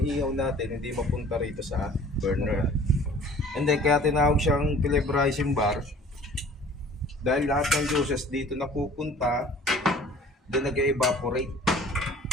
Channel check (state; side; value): normal; both; correlation 0.49